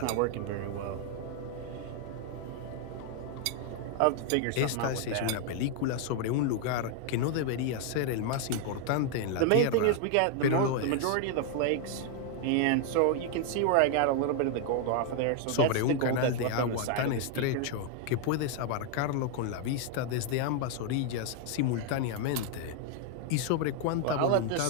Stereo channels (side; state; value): both; different; correlation 0.00